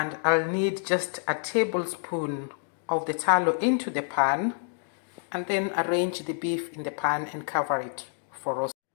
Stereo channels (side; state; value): right; silent; 59 dB below the other